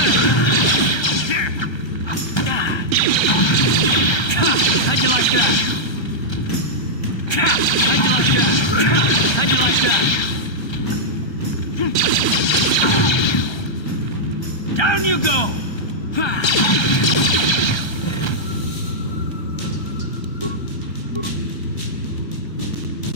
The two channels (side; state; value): right; late; 1.3 ms